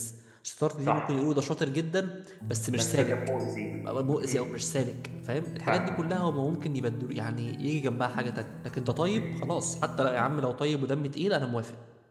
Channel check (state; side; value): identical; both; correlation 1.00